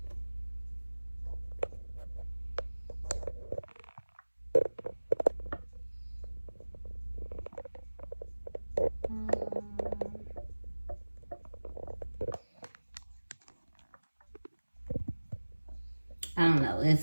I don't know,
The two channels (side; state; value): both; inverted; correlation -1.00